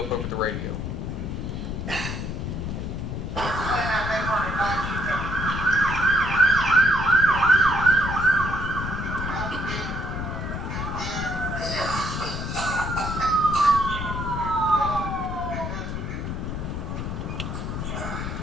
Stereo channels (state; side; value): noise; left; rumble, 4 dB below the sound